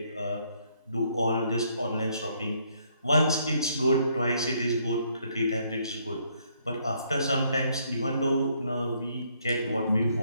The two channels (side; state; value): both; inverted; correlation -0.69